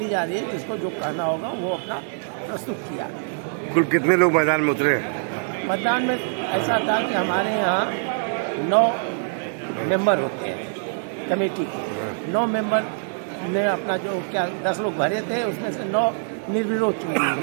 जा रही है। जिसको जो कहना होगा वो अपना प्रस्तुत किया। कुल कितने लोग मैदान में उतरे? मतदान में ऐसा था कि हमारे यहाँ 9 मेंबर होते हैं कमेटी के। 9 मेंबर ने अपना जो 10 लोग भरे थे उसमें से 9 निर्विरोध चुने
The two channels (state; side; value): silent; left; digital silence